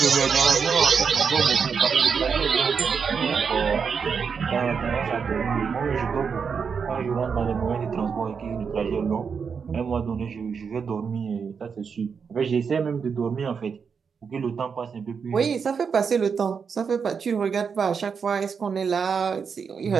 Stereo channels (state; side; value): quieter; left; 6.1 dB